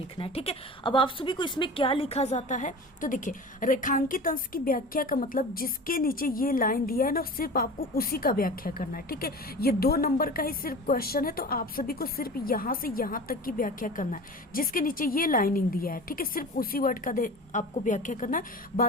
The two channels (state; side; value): normal; both; correlation 0.35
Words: है। ठीक है, अब आप सभी को इसमें क्या लिखा जाता है, तो देखिए रेखांकित अंश की व्याख्या का मतलब जिसके नीचे ये लाइन दिया है ना, सिर्फ आपको उसी का व्याख्या करना है। ठीक है, ये 2 नंबर का ही सिर्फ क्वेश्चन है, तो आप सभी को सिर्फ यहाँ से यहाँ तक की व्याख्या करना है। जिसके नीचे ये लाइनिंग दिया है, ठीक है, सिर्फ उसी वर्ड का आपको व्याख्या करना है,